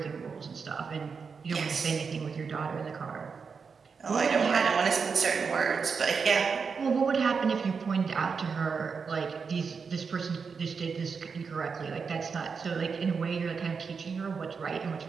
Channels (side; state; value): left; quieter; 5.5 dB